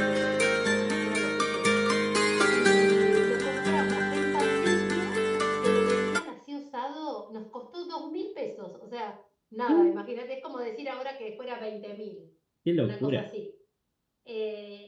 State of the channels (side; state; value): both; identical; correlation 1.00